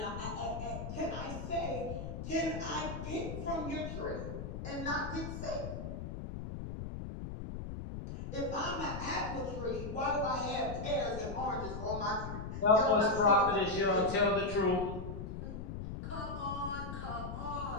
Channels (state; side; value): noise; left; rumble, 7 dB below the sound